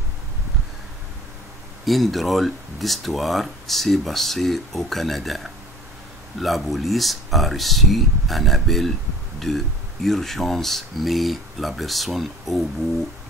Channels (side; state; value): both; normal; correlation 0.46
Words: Une drôle d'histoire s'est passée au Canada. La police a reçu un appel de urgence, mais la personne au bout